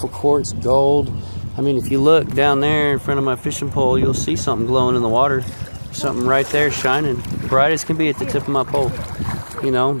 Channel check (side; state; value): both; inverted; correlation -1.00